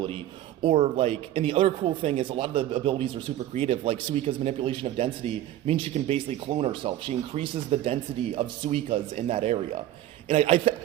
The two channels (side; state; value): left; quieter; 13.2 dB